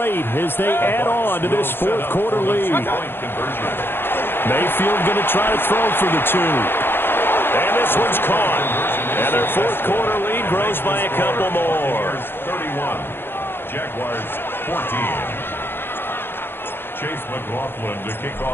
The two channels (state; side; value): late; right; 0.10 ms